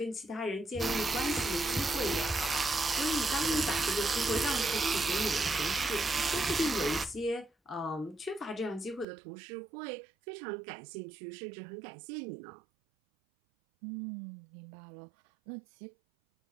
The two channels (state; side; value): drops out; left; at 9.1 s